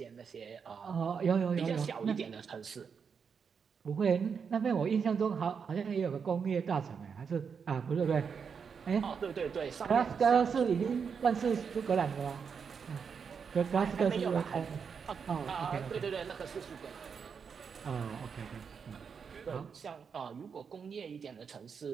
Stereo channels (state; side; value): quieter; left; 6.3 dB